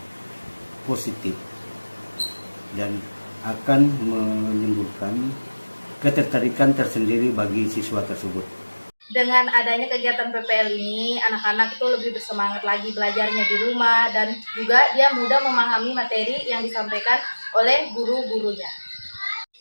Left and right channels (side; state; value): both; inverted; correlation -1.00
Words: positif dan akan menimbulkan ketertarikan tersendiri bagi siswa tersebut. Dengan adanya kegiatan PPL ini, anak-anak itu lebih bersemangat lagi belajarnya di rumah dan juga dia mudah memahami materi yang disampaikan oleh guru-gurunya.